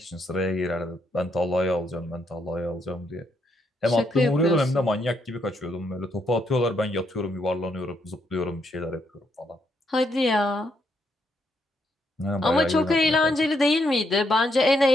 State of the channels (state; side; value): normal; both; correlation 0.76